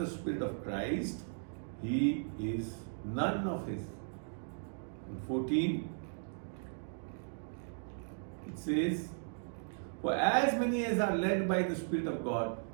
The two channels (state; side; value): silent; left; digital silence